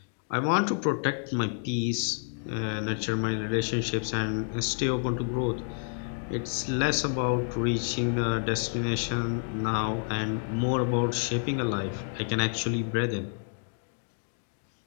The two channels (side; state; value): right; silent; 57 dB below the other